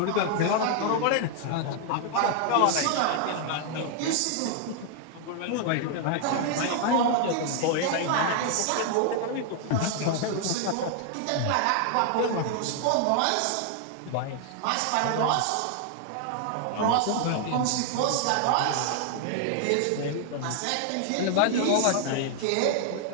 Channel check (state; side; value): different; both; correlation 0.00